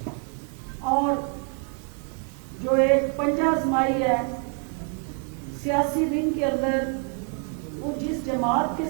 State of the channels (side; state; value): left; quieter; 36.5 dB